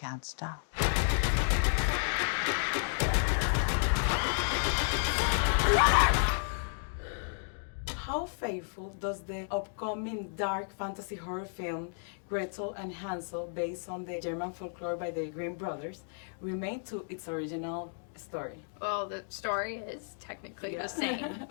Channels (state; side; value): silent; right; digital silence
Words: stop. How faithful does the upcoming dark fantasy horror film Gretel and Hansel, based on the German folklore by the Grimm brothers, remain to its original story? Well, the story is technically the same,